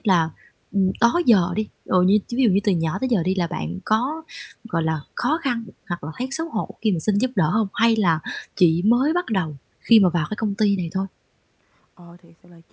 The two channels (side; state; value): both; identical; correlation 1.00